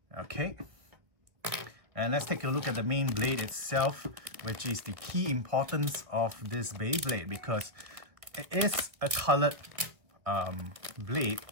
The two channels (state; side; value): late; left; 2.0 ms